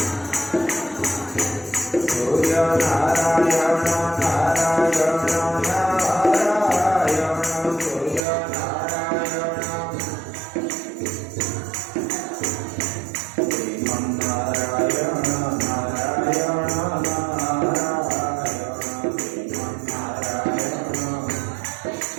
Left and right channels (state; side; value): drops out; left; at 8.2 s